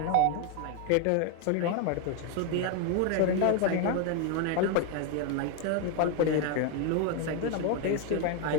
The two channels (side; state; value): both; different; correlation 0.01